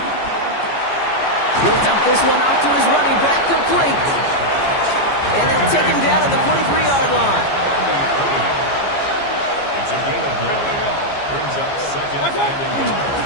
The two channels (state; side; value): late; right; 15 ms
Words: He'll dump this one off to his running back, complete. And they'll take him down at the 43-yard line. It's a gain of 9. Brings up 2nd and